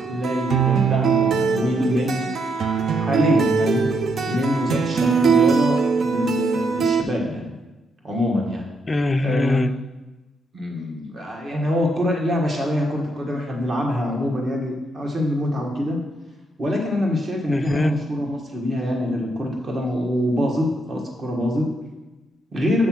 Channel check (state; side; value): normal; both; correlation 0.77